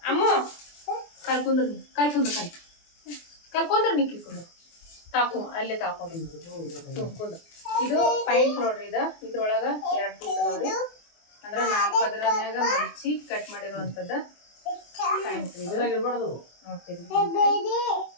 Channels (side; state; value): right; late; 24 ms